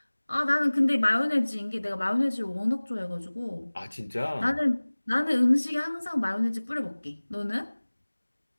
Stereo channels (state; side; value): inverted; both; correlation -1.00